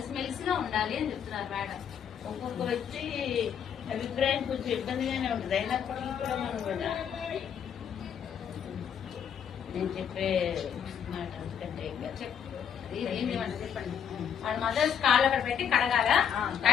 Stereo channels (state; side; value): quieter; right; 8.1 dB